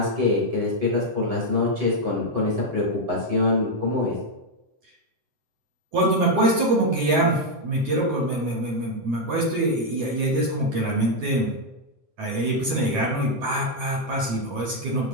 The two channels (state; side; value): late; left; 7.8 ms